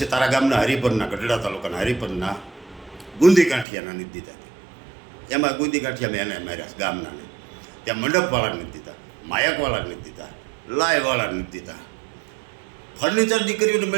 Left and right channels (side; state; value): left; drops out; at 3.7 s